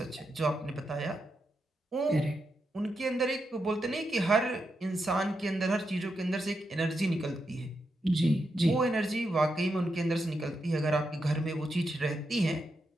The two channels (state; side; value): normal; both; correlation 0.85